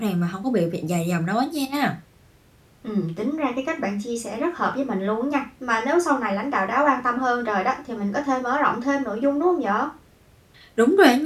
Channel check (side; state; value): both; identical; correlation 1.00